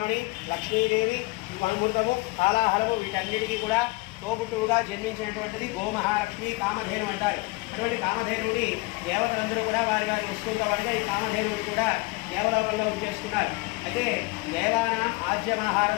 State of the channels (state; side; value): quieter; right; 24.3 dB